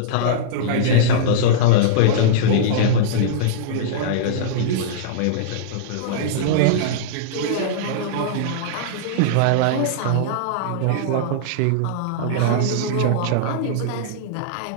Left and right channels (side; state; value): both; different; correlation -0.03